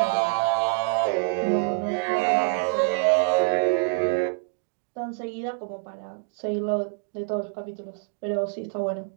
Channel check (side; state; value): left; silent; digital silence